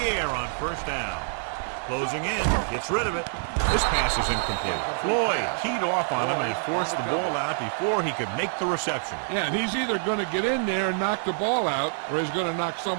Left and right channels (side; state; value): left; silent; digital silence